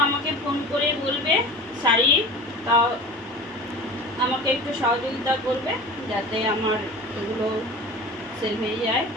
আমাকে ফোন করে বলবে শাড়ি, তাও আমাকে একটু সহযোগিতা করবে যাতে আমার এগুলো সেল হয়ে যায়।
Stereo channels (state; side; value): normal; both; correlation 0.36